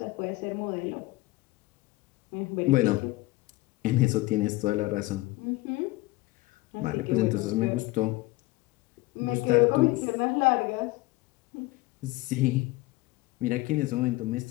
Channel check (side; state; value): right; quieter; 20.3 dB